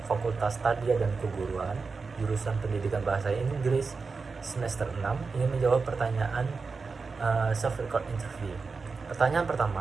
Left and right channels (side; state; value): left; quieter; 4.6 dB